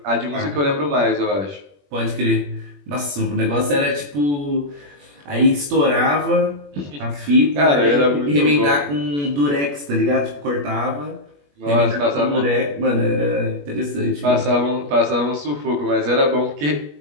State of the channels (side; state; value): left; late; 21 ms